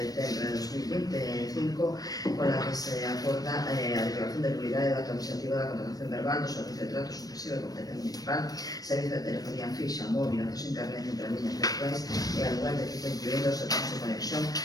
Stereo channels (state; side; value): late; right; 0.18 ms